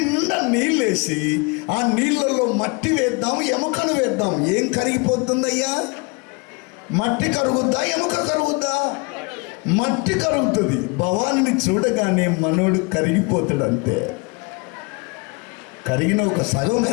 నీళ్ళేసి ఆ నీళ్ళలో మట్టి వేద్దాం, ఎముకను వేద్దాం. ఏం కరిగిపోతుందయ్యా? మట్టి కరుగుద్దా, ఎముక కరుగుద్దా? మట్టి కరుగుతుంది. భవానిని చూడగానే మనోడు కరిగిపోతాడు. అంతే. కరిగిన ఒక సగం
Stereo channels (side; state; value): right; quieter; 29.5 dB